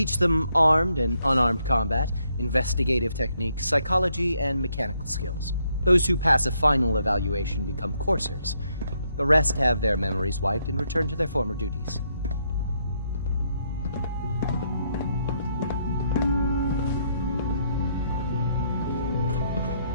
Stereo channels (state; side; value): inverted; both; correlation -0.74